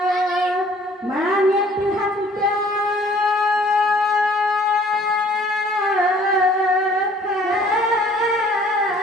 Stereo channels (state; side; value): normal; both; correlation 0.55